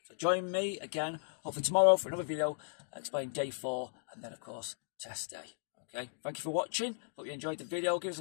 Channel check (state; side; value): silent; right; digital silence